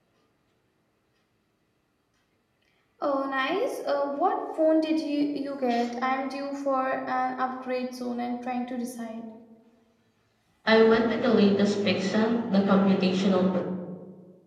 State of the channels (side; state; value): both; identical; correlation 1.00